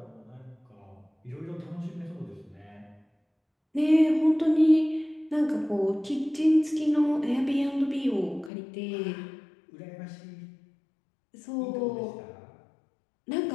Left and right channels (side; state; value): right; drops out; at 8.5 s